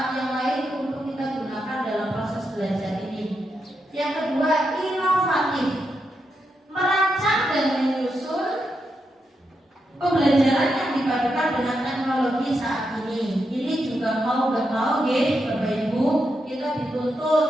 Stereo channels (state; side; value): normal; both; correlation 0.84